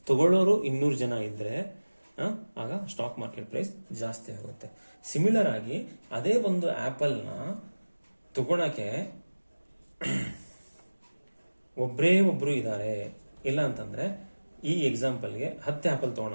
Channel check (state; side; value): inverted; both; correlation -1.00